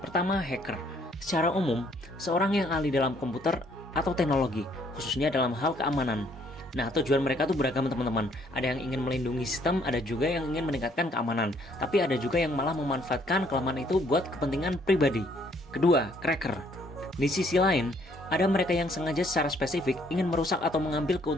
Pertama, hacker. Secara umum, seorang yang ahli dalam komputer atau teknologi, khususnya dalam hal keamanan. Nah, tujuan mereka tuh beragam teman-teman. Ada yang ingin melindungi sistem, ada juga yang ingin meningkatkan keamanan. Tapi ada juga yang malah memanfaatkan kelemahan itu buat kepentingan pribadi. Kedua, cracker. Di sisi lain, ada mereka yang sengaja secara spesifik ingin merusak atau mengambil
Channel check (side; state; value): both; normal; correlation 0.65